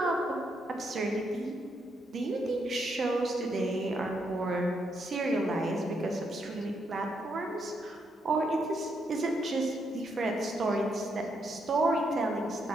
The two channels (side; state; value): both; normal; correlation 0.78